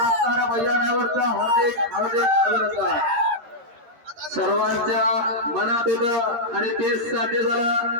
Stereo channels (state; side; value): late; left; 13 ms